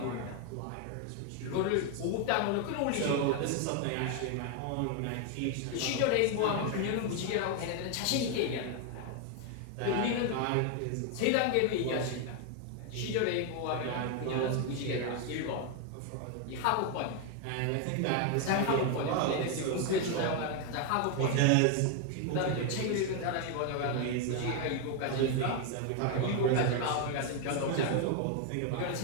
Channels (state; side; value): different; both; correlation 0.01